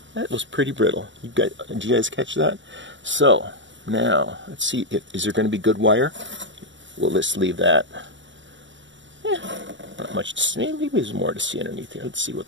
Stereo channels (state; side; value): late; left; 0.54 ms